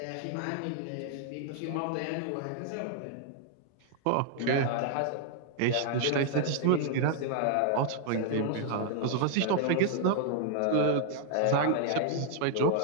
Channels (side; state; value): both; different; correlation 0.00